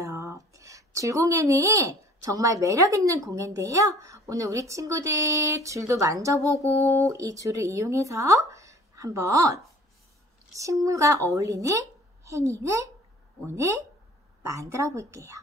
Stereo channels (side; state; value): both; normal; correlation 0.50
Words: 줄공예는 정말 매력있는 공예인데요. 오늘 우리 친구들 줄도 만져보고 이 줄을 이용해서 한번 식물과 어울리는 행인을 오늘 만들어 볼게요.